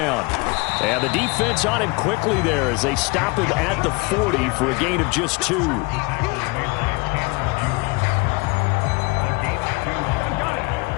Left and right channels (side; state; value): right; quieter; 26.9 dB